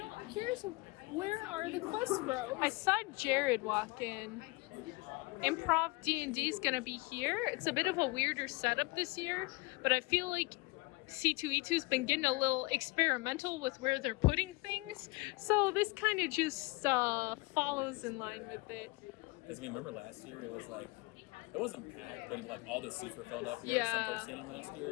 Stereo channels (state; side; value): quieter; right; 24.6 dB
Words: I'm curious, where are the Quest Bros? I saw Jared walk in. Improv D&D is gonna be here. It's a bit of a weirder setup this year, but I feel like C2E2's been getting a little experimental with where they're putting things, so this kind of just follows in line with it. Because remember last year it was like, it wasn't packed, but like all the seats were filled up. There were some folks standing last